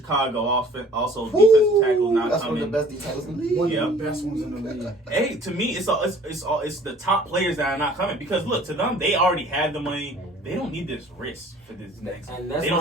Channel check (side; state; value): both; normal; correlation 0.51